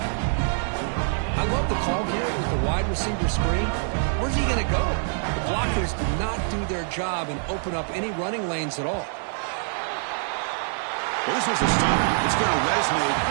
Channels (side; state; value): left; silent; 62 dB below the other